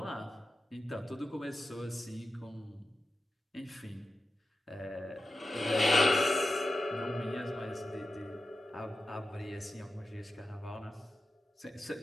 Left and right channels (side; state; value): both; normal; correlation 0.91